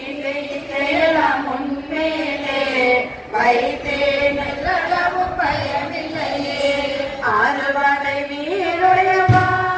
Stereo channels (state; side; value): identical; both; correlation 1.00